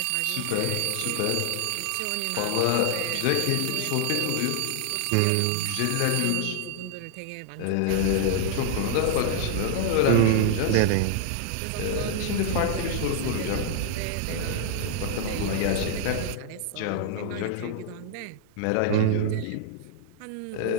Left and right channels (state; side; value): different; both; correlation -0.01